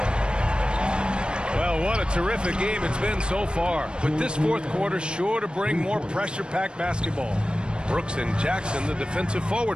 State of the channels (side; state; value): left; late; 0.053 ms